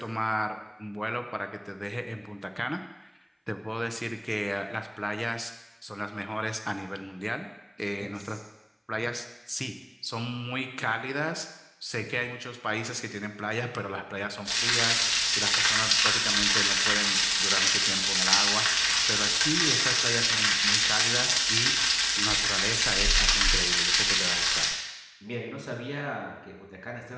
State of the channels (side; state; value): both; identical; correlation 1.00